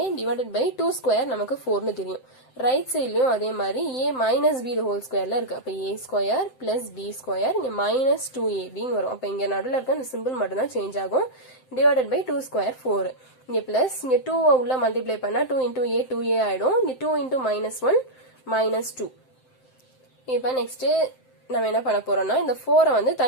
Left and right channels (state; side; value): late; right; 7.7 ms